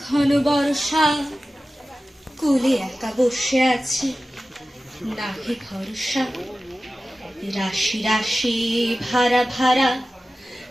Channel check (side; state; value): both; normal; correlation 0.95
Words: ঘন বর্ষা, কুলে একা বসে আছি নাহি ভরসা। রাশি রাশি ভাড়া ভাড়া